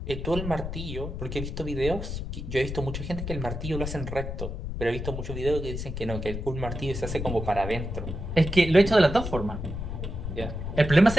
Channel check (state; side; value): noise; left; rumble, 5 dB below the sound